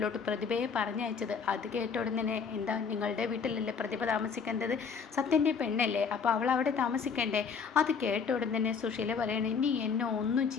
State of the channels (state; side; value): quieter; right; 6.0 dB